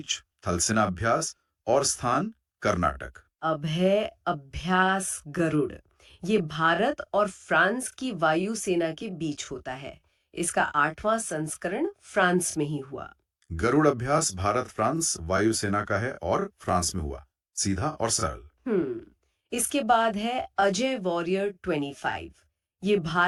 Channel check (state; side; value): identical; both; correlation 1.00